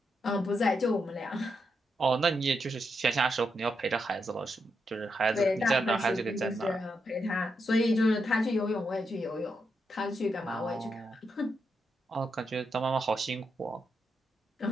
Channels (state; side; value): normal; both; correlation 0.83